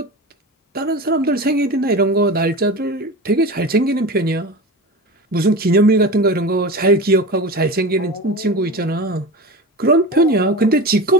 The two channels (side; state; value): both; normal; correlation 0.28